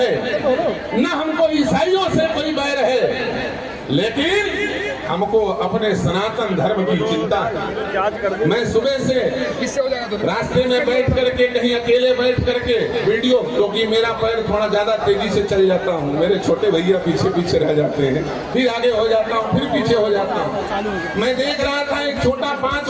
न हमको ईसाइयों से कोई बैर है, लेकिन हमको अपने सनातन धर्म की चिंता है। मैं सुबह से रास्ते में बैठ करके, कहीं अकेले बैठ करके वीडियो, क्योंकि मेरा पैर थोड़ा ज्यादा तेजी से चल जाता हूँ, मेरे छोटे भैया पीछे पीछे रह जाते हैं, फिर आगे हो जाता हूँ, फिर पीछे हो जाता हूँ। मैं देख रहा था एक छोटा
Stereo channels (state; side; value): identical; both; correlation 1.00